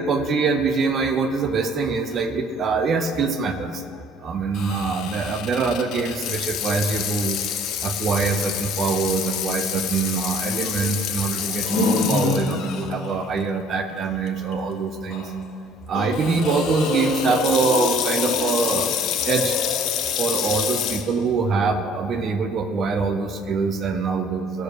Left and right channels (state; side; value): normal; both; correlation 0.56